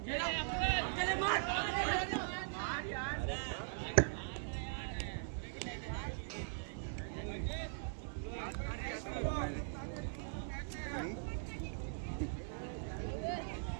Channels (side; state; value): left; silent; digital silence